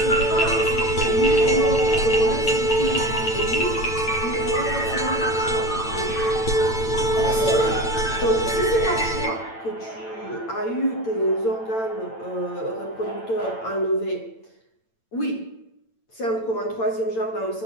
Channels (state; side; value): late; right; 8.9 ms